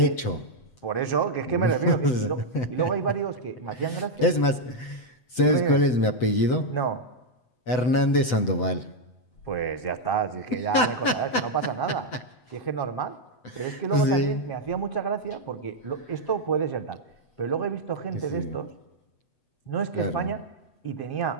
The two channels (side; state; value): right; late; 8.0 ms